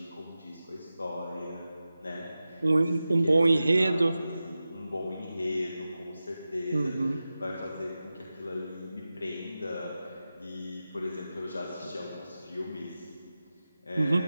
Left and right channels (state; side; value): inverted; both; correlation -0.94